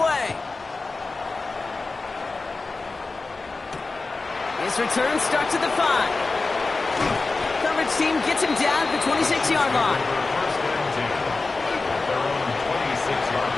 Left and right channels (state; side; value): quieter; right; 3.7 dB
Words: His return starts at the 5. Coverage team gets him down at the 26-yard line. First and 10. Their own 26-yard